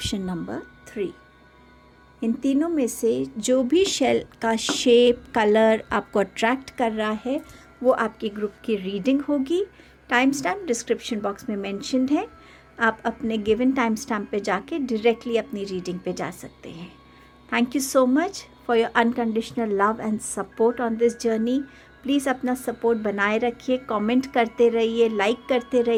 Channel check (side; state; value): both; identical; correlation 1.00